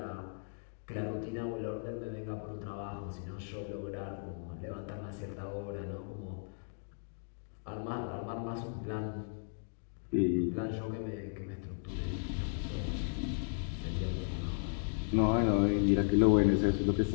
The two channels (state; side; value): silent; right; digital silence